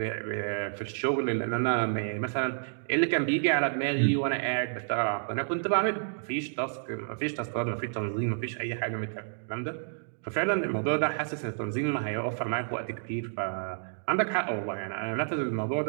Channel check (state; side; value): silent; left; digital silence